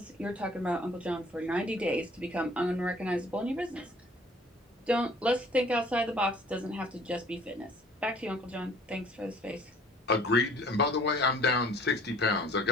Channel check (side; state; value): both; normal; correlation 0.53